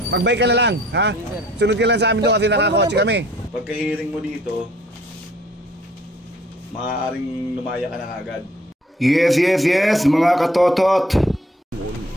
Magbike ka na lang, ha? Sunod ka lang sa amin doon kasi nakakotse kami. Pagka-hearing mo dito, maaaring lumaya ka na agad. Yes, mga katotot.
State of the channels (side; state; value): both; normal; correlation 0.57